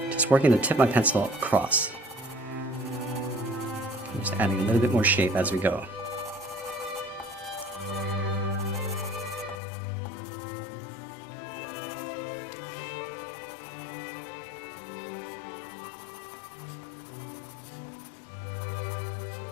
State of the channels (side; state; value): right; drops out; at 9.6 s